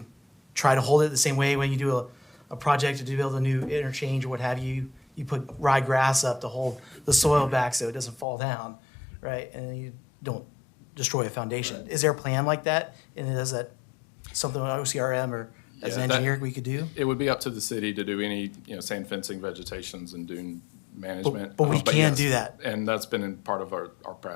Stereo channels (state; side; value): drops out; right; at 8.2 s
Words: try to hold it the same way when you do a project to build a new interchange or what have you, you put ryegrass up to hold the soil back so it doesn't fall down, right? And then you don't destroy a foundation. Is there a plan like that? And is that something with OCRM or as an Yeah, that- engineer we could do? It would be up to the city to do any, sand fencing, vegetations, and dune management. But we But can yes, do that. And that's been in part of our